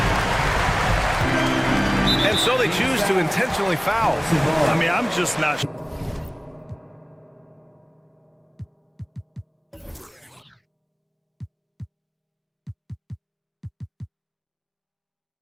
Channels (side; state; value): both; identical; correlation 1.00